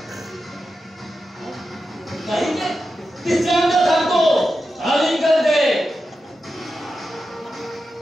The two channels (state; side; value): normal; both; correlation 0.90